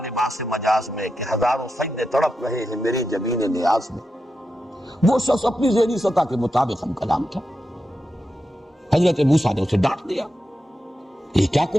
مجاز میں کہ ہزاروں سجدے تڑپ رہے ہیں میری جبین نیاز میں، وہ شخص اپنی ذہنی سطح کے مطابق ہم کلام تھا۔ حضرت موسیٰ نے اسے ڈانٹ دیا، یہ کیا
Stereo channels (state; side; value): normal; both; correlation 0.88